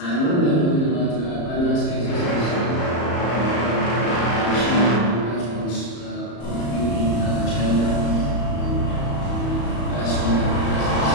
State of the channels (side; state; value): right; late; 34 ms